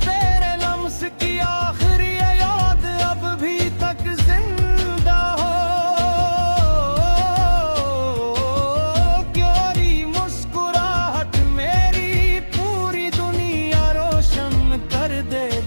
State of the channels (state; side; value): inverted; both; correlation -1.00